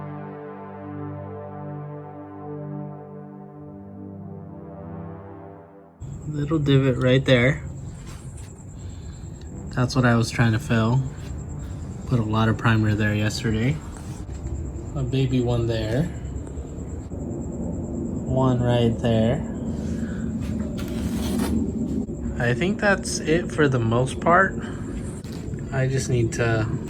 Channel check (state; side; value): identical; both; correlation 1.00